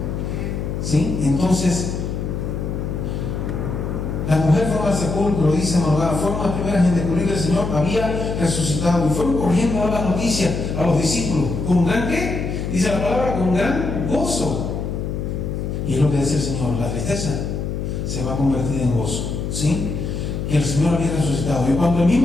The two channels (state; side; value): noise; left; hum, 3 dB below the sound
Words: ¿Sí? Entonces, la mujer fue al sepulcro, dice Morgana, fueron las primeras en descubrir que el Señor había resucitado, y fueron corriendo a dar la noticia a los discípulos, ¿con gran qué? Dice la palabra, con gran gozo. Y es lo que dice el Señor, la tristeza se va a convertir en gozo, ¿sí? Que el Señor había resucitado. Y cuando el